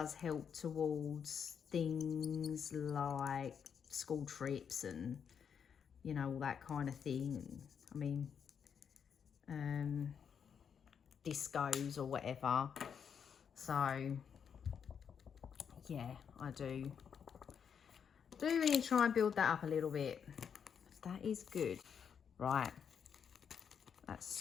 help towards things like school trips and, you know, all that kind of thing. I mean, discos or whatever. So yeah, I do really try and build that up a little bit. That is good. Right, that's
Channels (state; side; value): quieter; right; 7.3 dB